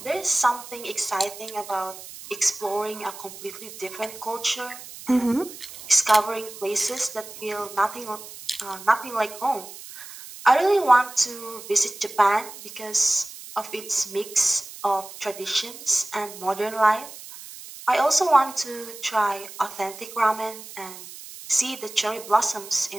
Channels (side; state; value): right; noise; hiss, 14 dB below the sound